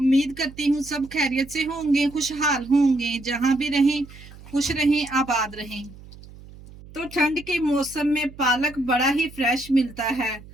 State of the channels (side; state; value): right; noise; hum, 19 dB below the sound